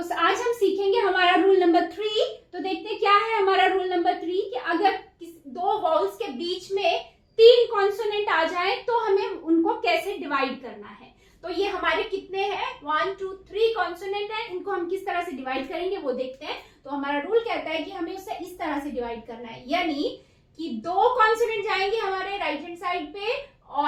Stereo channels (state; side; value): identical; both; correlation 1.00